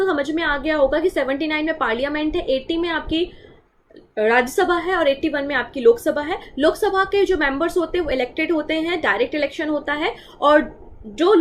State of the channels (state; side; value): identical; both; correlation 1.00